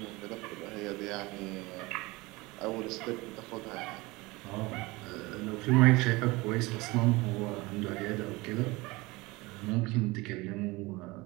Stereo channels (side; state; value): left; quieter; 22.7 dB